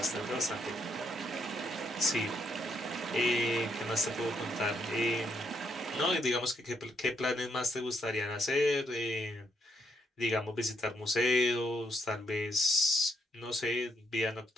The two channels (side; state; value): both; normal; correlation 0.75